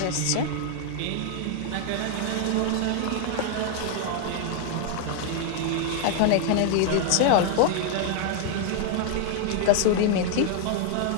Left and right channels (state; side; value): different; both; correlation 0.00